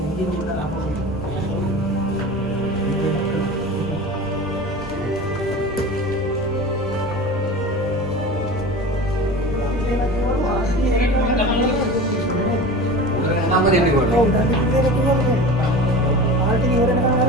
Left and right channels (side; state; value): both; normal; correlation 0.34